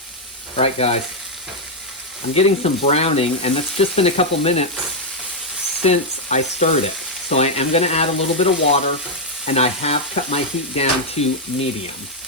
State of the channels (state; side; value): normal; both; correlation -0.01